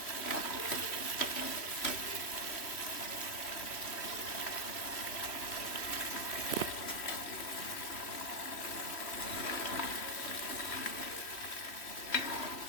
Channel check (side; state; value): right; late; 3.1 ms